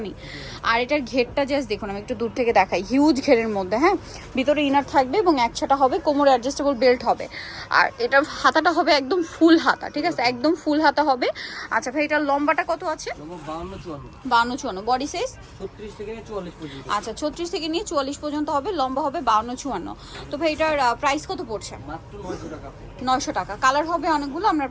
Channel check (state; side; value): identical; both; correlation 1.00